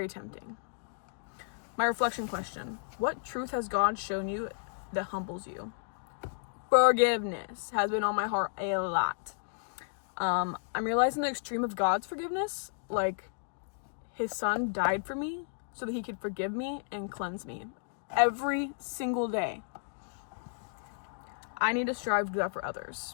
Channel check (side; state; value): right; silent; digital silence